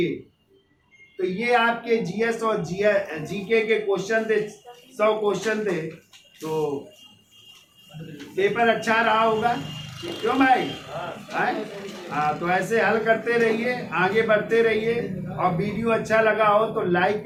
तो ये आपके GS और GK के क्वेश्चन थे, 100 क्वेश्चन थे। तो पेपर अच्छा रहा होगा, क्यों भाई? हाँ, तो ऐसे हल करते रहिए, आगे बढ़ते रहिए। और वीडियो अच्छा लगा हो तो लाइक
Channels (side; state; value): both; identical; correlation 1.00